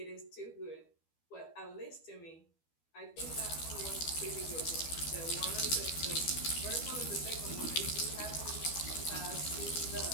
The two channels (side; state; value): right; late; 12 ms